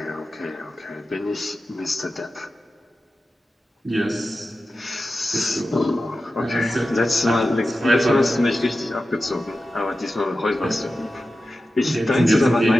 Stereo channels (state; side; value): normal; both; correlation 0.93